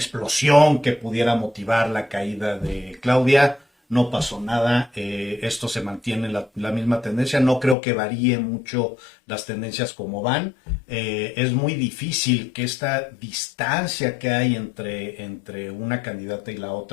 que pudiera motivar la caída de Claudia. No pasó nada, esto se mantiene la misma tendencia, no creo que varíe mucho las tendencias como van. Es muy difícil que esta distancia que hay entre una candidata y la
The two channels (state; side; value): drops out; right; at 7.8 s